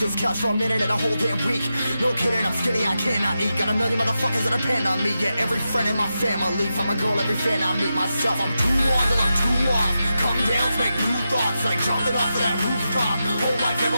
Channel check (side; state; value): both; inverted; correlation -0.89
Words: this couch for a minute and a whole damn week. No kidding, I'm skinny, I cannot eat. Got a million motherfuckers that depend on me. Yeah, every friend in my family, from a girl, every fan I meet myself. I'm too on till I'm too off. Come down to make new thoughts, like jumping off of that rooftop. Whole life